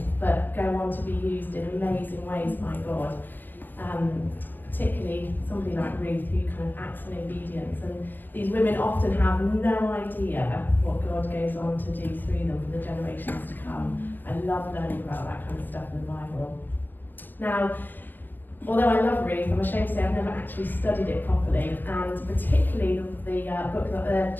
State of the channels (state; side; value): late; right; 0.090 ms